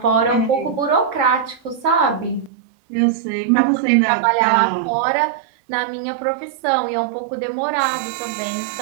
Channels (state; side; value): drops out; left; at 2.5 s